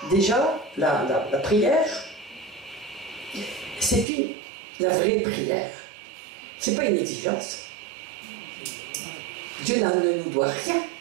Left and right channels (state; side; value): drops out; left; at 4.0 s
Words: déjà, la prière, C'est la vraie prière. C'est pas une exigence. Dieu ne nous doit rien.